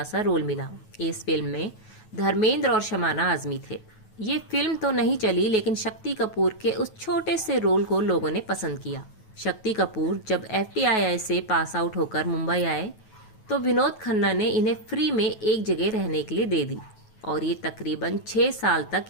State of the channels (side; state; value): right; late; 9.3 ms